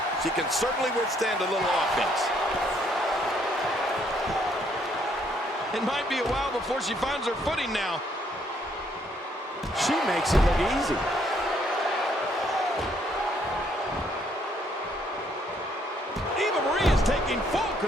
She can certainly withstand a little offense. It might be a while before she finds her footing now. She makes it look easy. Eva Marie is taking full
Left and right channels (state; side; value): normal; both; correlation 0.69